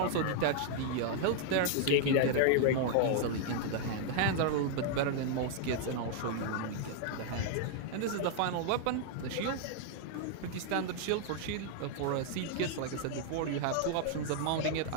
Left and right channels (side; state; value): both; different; correlation 0.00